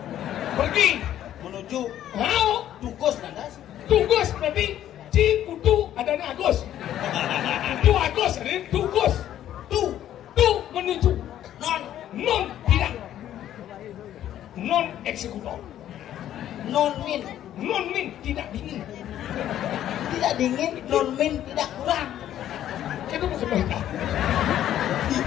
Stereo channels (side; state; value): right; quieter; 11.7 dB